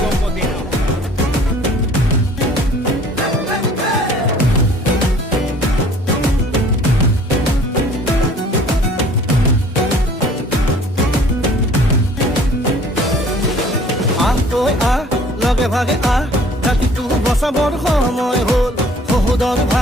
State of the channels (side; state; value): both; normal; correlation 0.53